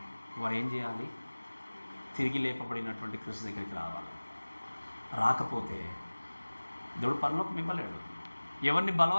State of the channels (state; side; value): inverted; both; correlation -1.00